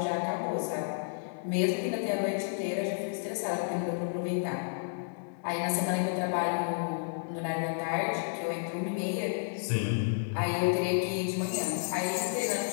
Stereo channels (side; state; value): right; silent; digital silence